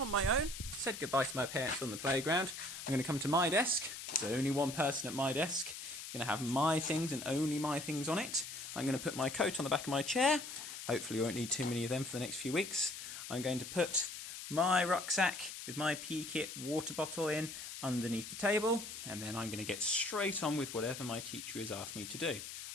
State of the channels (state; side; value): noise; left; hiss, 9 dB below the sound